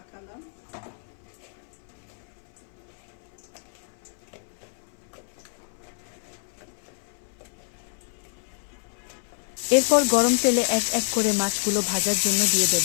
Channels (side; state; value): right; silent; 59 dB below the other